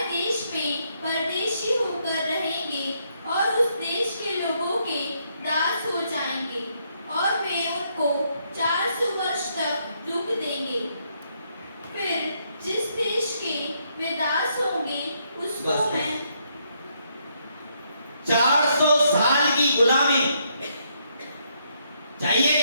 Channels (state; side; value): inverted; both; correlation -0.74